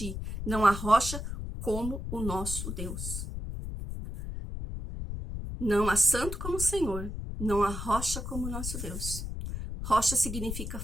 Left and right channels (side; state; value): left; noise; rumble, 6 dB below the sound